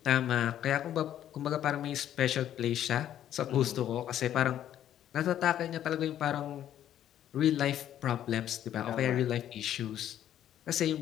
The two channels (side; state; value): right; quieter; 11.1 dB